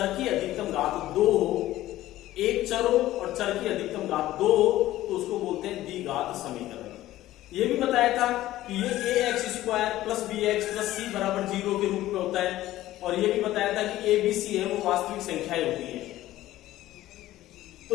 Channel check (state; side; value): quieter; right; 15.0 dB